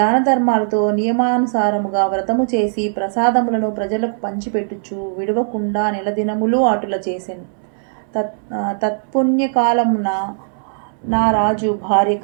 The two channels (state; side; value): silent; left; digital silence